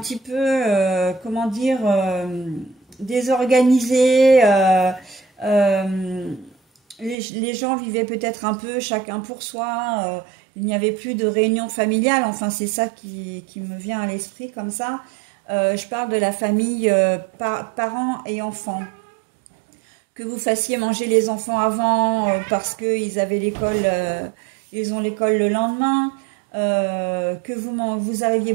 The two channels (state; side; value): drops out; left; at 7.2 s